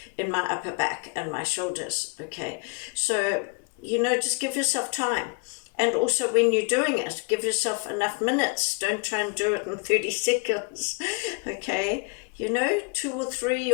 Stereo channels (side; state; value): right; quieter; 33.9 dB